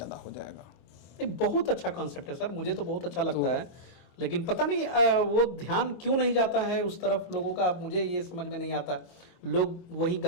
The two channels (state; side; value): late; right; 24 ms